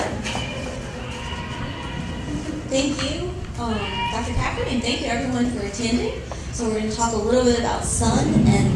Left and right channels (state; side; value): identical; both; correlation 1.00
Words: Thank you, Dr. Packard, and thank you everyone for attending. So we're going to talk a little bit about sun